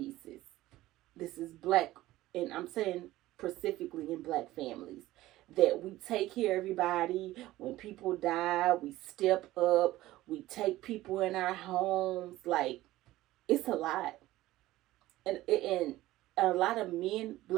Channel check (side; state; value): left; quieter; 16.4 dB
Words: This is black, and I'm saying specifically in black families, that we take care of everybody. When people die, we step up. We take people in our homes. Like, it's a lot. And a lot of men,